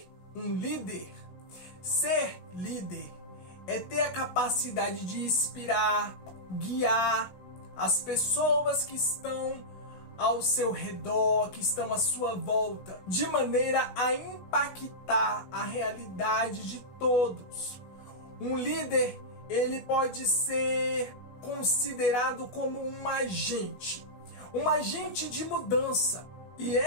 um líder? Ser líder é ter a capacidade de inspirar, guiar as pessoas que estão ao seu redor, que estão à sua volta, de maneira a impactar a realidade de todos. Um líder, ele pode ser considerado como um agente de mudança. E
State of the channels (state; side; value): late; right; 16 ms